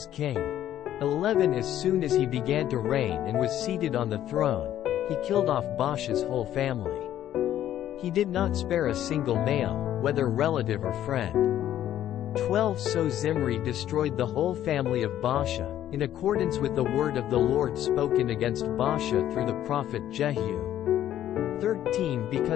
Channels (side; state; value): right; quieter; 11.8 dB